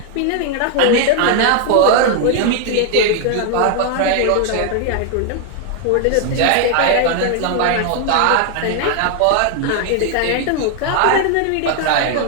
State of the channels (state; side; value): different; both; correlation 0.00